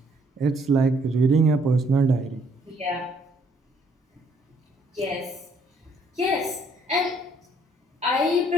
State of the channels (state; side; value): normal; both; correlation 0.66